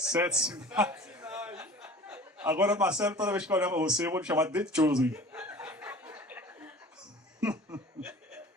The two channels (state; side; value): normal; both; correlation 0.43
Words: sinais. Agora, Marcelo, toda vez que eu olhar para você, eu vou te chamar de The Chosen.